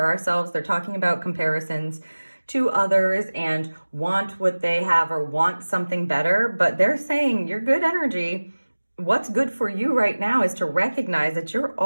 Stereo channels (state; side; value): inverted; both; correlation -1.00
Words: ourselves. They're talking about comparisons to others and want what they have or want something better, but they're saying your good energy, what's good for you right now is to recognize that you're